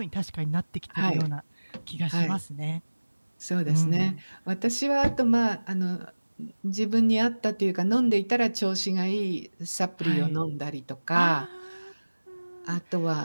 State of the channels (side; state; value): both; inverted; correlation -1.00